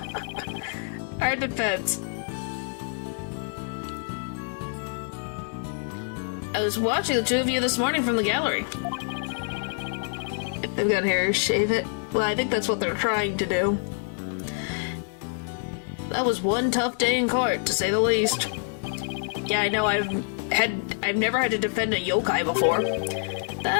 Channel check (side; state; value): right; silent; 60 dB below the other